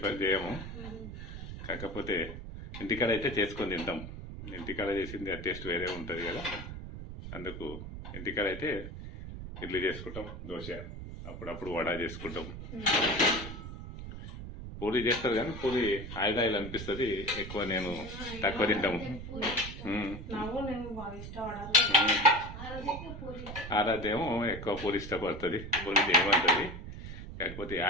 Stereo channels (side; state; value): right; noise; rumble, 10 dB below the sound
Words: చేయము. కాకపోతే ఇంటికాడ అయితే చేసుకొని తింటాం. ఇంటికాడ చేసింది ఆ టేస్ట్ వేరే ఉంటుంది కదా. అందుకు ఇంటికాడ అయితే ఇడ్లీ చేసుకుంటాం, దోశ, అప్పుడప్పుడు వడ చేసుకుంటాం. పూరి చేస్తారు కానీ పూరి ఆయిల్ అనిపిస్తుంది ఎక్కువ. నేను తక్కువ తింటాము. ఆరాధ్యేమో ఎక్కువ పూరి ఇష్టపడుతుంది. పూరి చేయమంటుంది. కాకపోతే